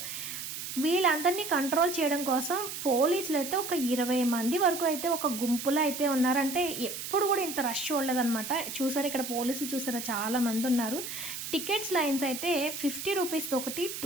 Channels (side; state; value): right; noise; hiss, 7 dB below the sound